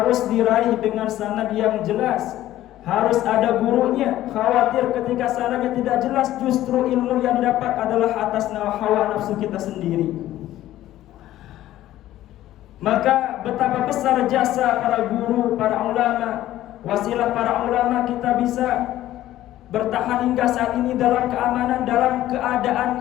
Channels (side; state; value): right; quieter; 14.0 dB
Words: diraih dengan sanad yang jelas, harus ada gurunya. Khawatir ketika sanadnya tidak jelas, justru ilmu yang didapat adalah atas hawa nafsu kita sendiri. Maka betapa besar jasa para guru, para ulama, wasilah para ulama kita bisa bertahan hingga saat ini dalam keamanan, dalam